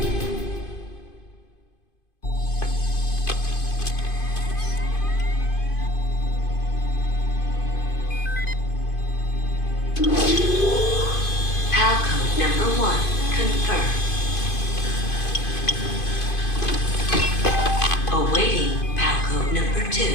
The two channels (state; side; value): late; right; 2.5 ms